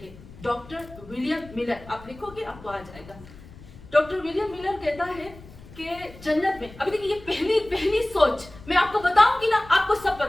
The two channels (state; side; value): noise; left; rumble, 19 dB below the sound